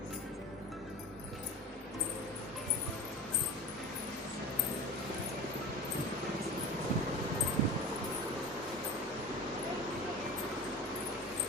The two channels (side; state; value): both; normal; correlation 0.32